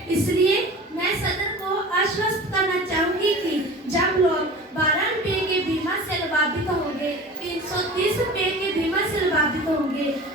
इसलिए मैं सदन को आश्वस्त करना चाहूंगी कि जब लोग 12 रुपये के बीमा से लाभान्वित होंगे, 330 रुपये के बीमा से लाभान्वित होंगे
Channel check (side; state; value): both; normal; correlation 0.37